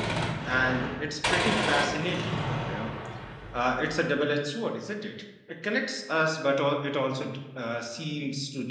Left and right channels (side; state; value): both; identical; correlation 1.00